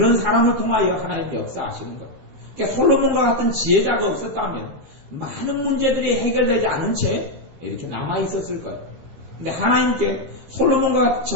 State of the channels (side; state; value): left; late; 15 ms